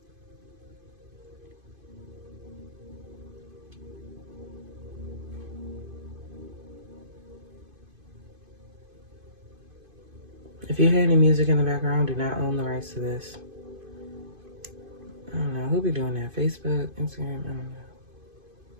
If you hear any music in the background, do not own the rights to this. I don't know. Who be doing that? Facebook, Instagram? I don't know.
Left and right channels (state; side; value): late; left; 2.5 ms